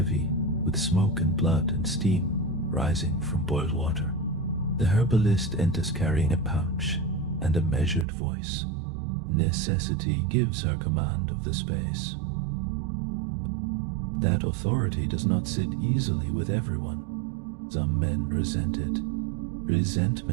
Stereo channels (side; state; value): left; drops out; at 8.1 s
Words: with smoke and blood and steam rising from boiled water. The herbalist enters carrying a pouch and a measured voice. Necessity gives her command of the space. That authority does not sit easily with everyone. Some men resent it.